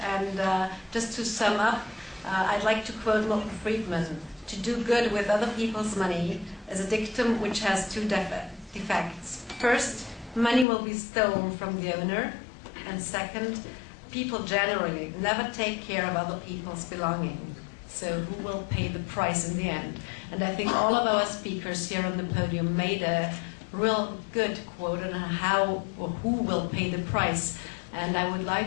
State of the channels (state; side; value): drops out; right; at 10.7 s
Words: And just to sum up, I'd like to quote Milton Friedman: "To do good with other people's money is a dictum which has two defects. First, money will be stolen from the owner. And second, people generally never take care of other people's belongings. So who will pay the price in the end?" And I think all of our speakers here on the podium made a real good quote on how or who will pay the price. And I would